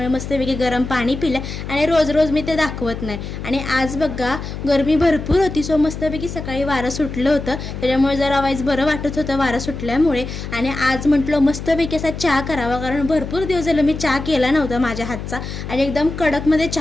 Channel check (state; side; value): noise; left; hum, 8 dB below the sound